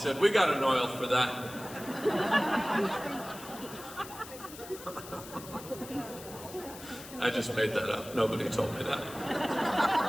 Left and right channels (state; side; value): noise; left; hiss, 15 dB below the sound